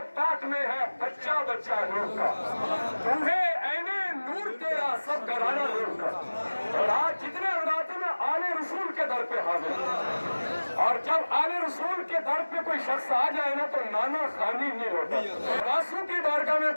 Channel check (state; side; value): inverted; both; correlation -1.00